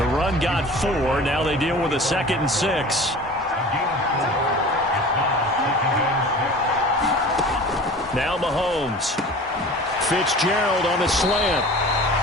run got 4. Now they deal with a 2nd and 6. Now Mahomes. Fitzgerald on the slant.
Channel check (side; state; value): both; normal; correlation 0.40